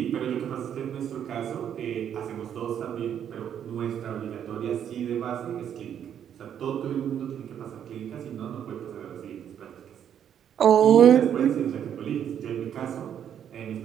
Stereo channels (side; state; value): left; quieter; 9.2 dB